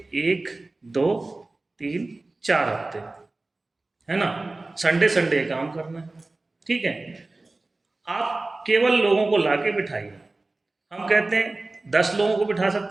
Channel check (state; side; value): quieter; left; 3.1 dB